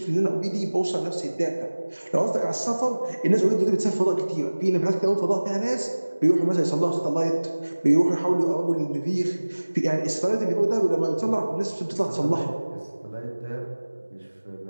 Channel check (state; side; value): inverted; both; correlation -1.00